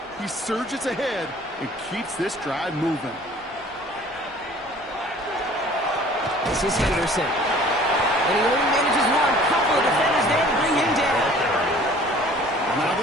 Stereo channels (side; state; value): both; normal; correlation 0.50